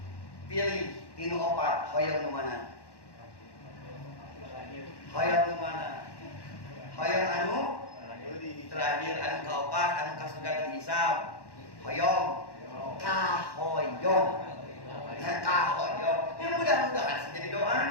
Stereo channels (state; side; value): late; right; 1.1 ms